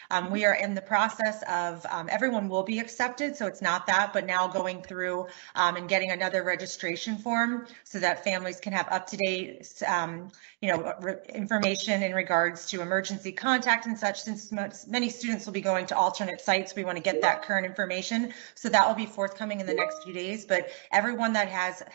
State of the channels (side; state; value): left; quieter; 34.6 dB